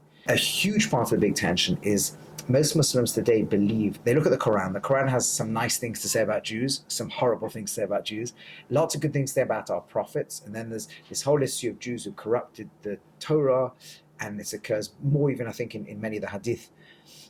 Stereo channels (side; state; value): both; identical; correlation 1.00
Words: a huge part of the big tension is most Muslims today believe, they look at the Quran. The Quran has some nice things to say about Jews, some horrible things to say about Jews, lots of good things to say about our prophets. And then there's this whole issue of Jews who corrupted the Torah. And this occurs more even, I think, in many of the hadith.